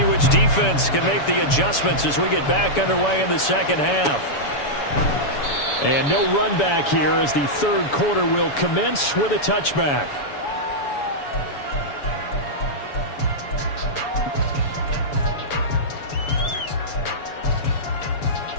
which defense can make the adjustments as we get back underway in the second half. And no run back here as the third quarter will commence with a touchback.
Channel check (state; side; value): late; right; 7.0 ms